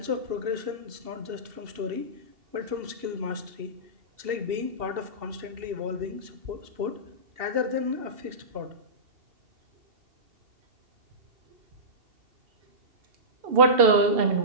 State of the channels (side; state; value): left; late; 2.7 ms